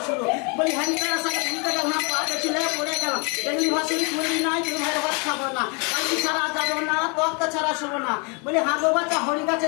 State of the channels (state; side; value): quieter; right; 33.0 dB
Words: শুরু। বলি হ্যান্ডকার সাথে ঘুরতে গেলাম পাতে ছিলে পড়ে গেলাম, এমনি ভাষণী তুলি নাই তুই ভাইয়ের ভাত খাবো না, কালকি ছাড়া যাবো না তক্তা ছাড়া শোবো না। বলি হাঁগো বাচ্চা হরি গাছে